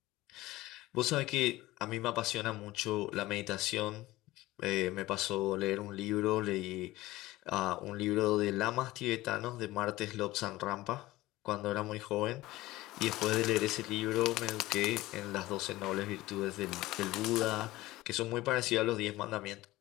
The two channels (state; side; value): quieter; right; 18.0 dB